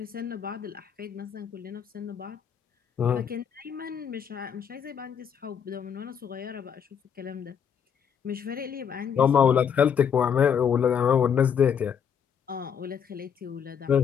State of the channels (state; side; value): quieter; right; 7.6 dB